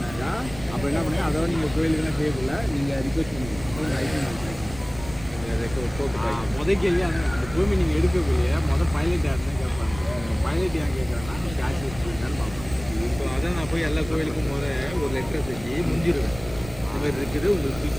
அப்போ என்ன பண்ணுங்க, அதோட நீங்கள் கோயிலுக்குலாம் செய்யக்குள்ள நீங்கள் ரிக்வெஸ்ட் பண்ணுவீங்க லைசன்ஸ் முதல் கேள்வி அந்த பூமி நீங்கள் எடுக்கக்கூடிய பைலட் யாருன்னு கேட்பாங்க. பைலட் ஏன் கேட்குறேன்னா கேஷ் வச்சுருந்தான்னு பார்ப்போம். இப்போ அதான் நான் போய் எல்லா கோயிலுக்கும் ஒரு லெட்டரை செஞ்சு முடிஞ்சிருவேன். இந்த மாதிரி இருக்குது, உங்களுக்கு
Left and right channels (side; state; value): right; noise; rumble, 14 dB below the sound